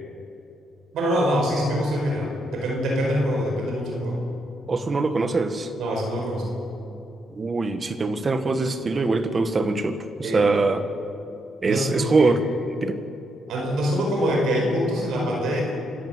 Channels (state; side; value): normal; both; correlation 0.80